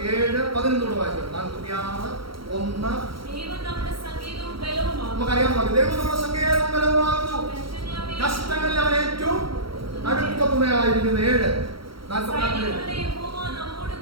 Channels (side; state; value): left; late; 0.74 ms